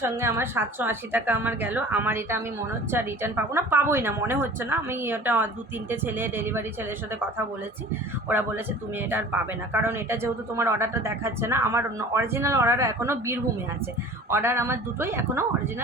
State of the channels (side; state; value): both; normal; correlation 0.43